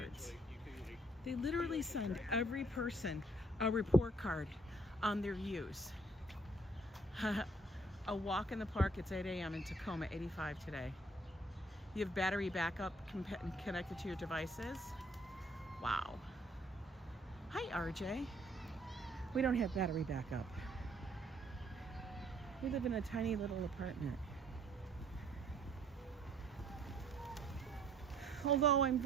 They literally send every person a report card on their use. A walk in the park, it's 8 a.m. in Tacoma, 85 today. You have battery backup connected to your devices. Wow. Hi, RJ. We don't have battery backup. We live in a tiny little apartment. Although I'm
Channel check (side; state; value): both; normal; correlation 0.62